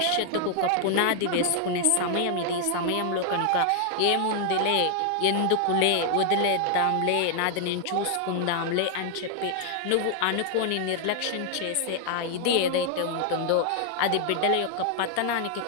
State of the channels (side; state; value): both; different; correlation 0.00